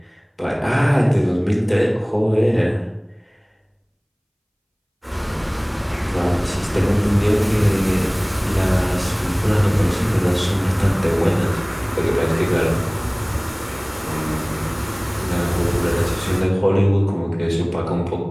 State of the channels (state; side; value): identical; both; correlation 1.00